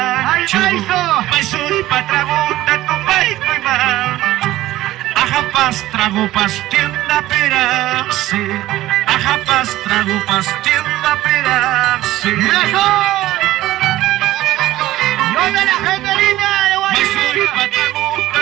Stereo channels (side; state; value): left; quieter; 15.6 dB